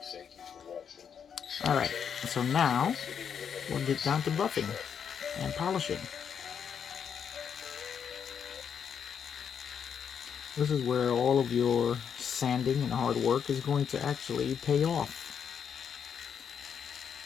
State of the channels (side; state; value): right; quieter; 7.5 dB